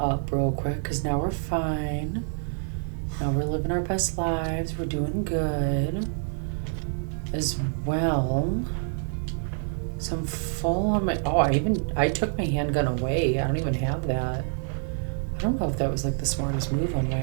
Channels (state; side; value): silent; left; 60 dB below the other